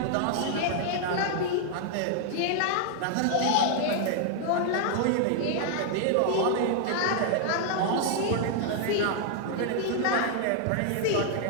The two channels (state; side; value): different; both; correlation 0.00